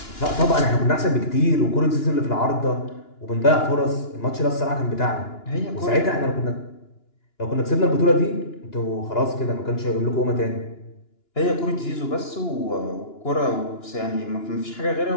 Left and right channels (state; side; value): late; right; 2.9 ms